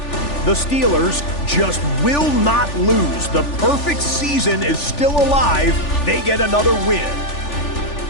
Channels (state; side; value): late; right; 3.4 ms